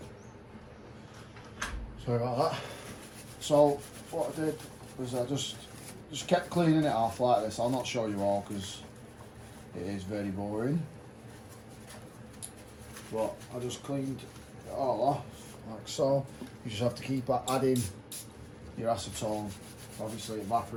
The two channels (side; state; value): both; identical; correlation 1.00